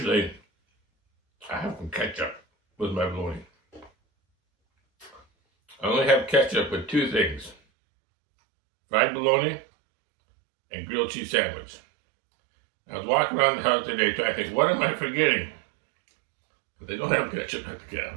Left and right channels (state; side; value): drops out; left; at 7.6 s